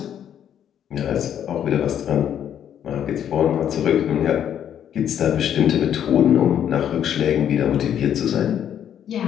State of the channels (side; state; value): right; quieter; 9.6 dB